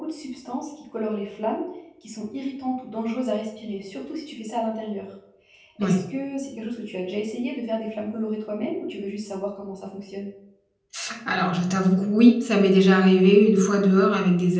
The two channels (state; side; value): identical; both; correlation 1.00